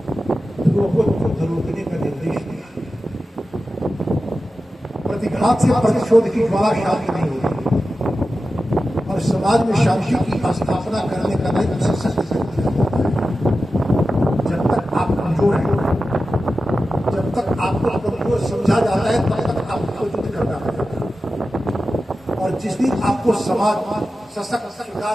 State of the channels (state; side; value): normal; both; correlation 0.93